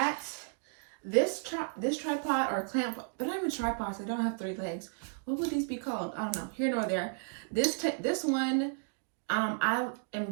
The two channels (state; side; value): silent; left; 56 dB below the other